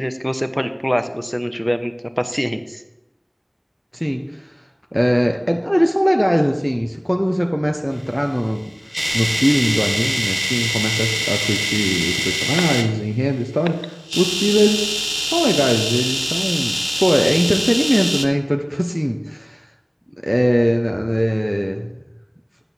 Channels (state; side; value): identical; both; correlation 1.00